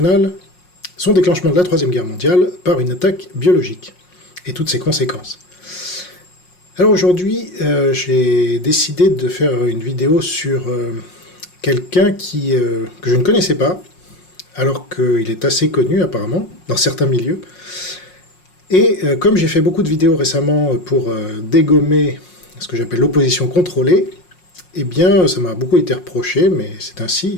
son déclenchement de la Troisième Guerre mondiale par une attaque biologique et toutes ses conséquences. Alors aujourd'hui, j'ai décidé de faire une vidéo sur quelqu'un que je ne connaissais pas, alors qu'il est assez connu apparemment, dans certains milieux. Et comme j'ai fait beaucoup de vidéos récemment pour dégommer ce que j'appelle l'opposition contrôlée, eh bien ça m'a beaucoup été reproché, mais c'est ainsi,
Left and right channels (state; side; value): late; right; 5.5 ms